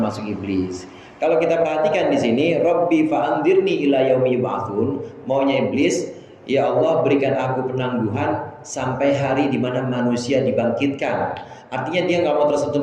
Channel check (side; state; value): both; identical; correlation 1.00